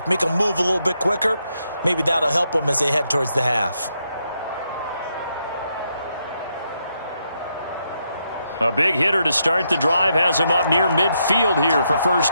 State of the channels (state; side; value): inverted; both; correlation -0.80